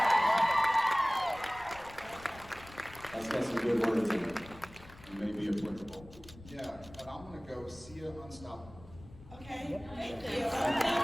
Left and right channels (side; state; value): left; noise; rumble, 19 dB below the sound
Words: That's got some good words in it. It may be applicable. Yeah, and I'm gonna go See Ya Unstoppable. Okay, thank you.